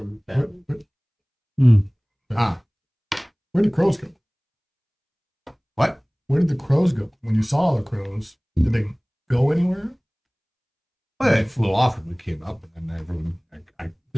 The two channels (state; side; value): identical; both; correlation 1.00